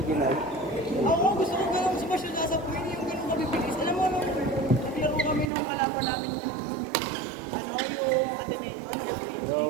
Ako gusto ko ganun smash yung nasa Queen, yung ganun kabibilis. Alam mo, nung naglaro kami nung kalaban namin yung academy.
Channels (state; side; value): drops out; left; at 5.5 s